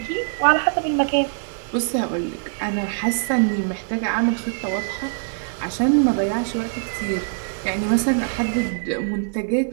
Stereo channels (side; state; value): left; silent; 62 dB below the other